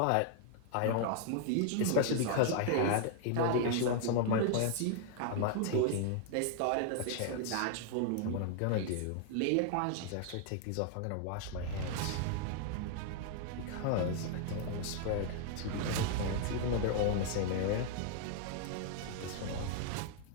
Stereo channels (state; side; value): different; both; correlation 0.00